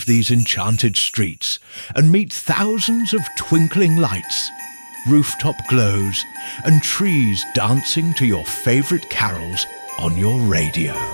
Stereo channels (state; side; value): inverted; both; correlation -1.00